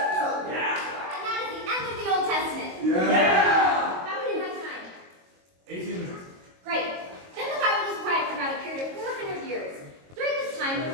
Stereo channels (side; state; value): left; late; 22 ms